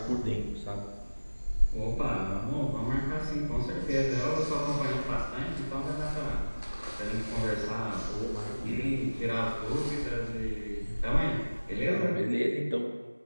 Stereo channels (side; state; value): both; inverted; correlation -1.00